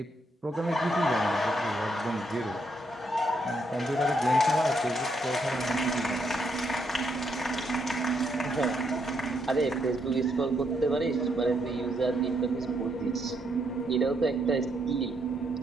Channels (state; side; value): normal; both; correlation 0.76